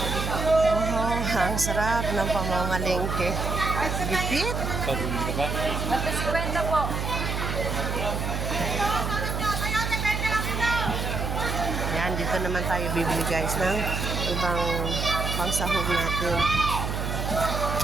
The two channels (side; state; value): right; noise; hum, 2 dB below the sound